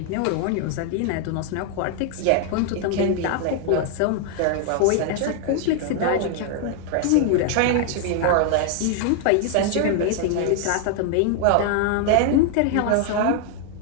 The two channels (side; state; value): both; different; correlation 0.00